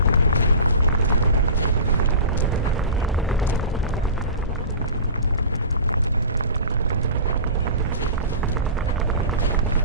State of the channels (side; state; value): both; inverted; correlation -0.34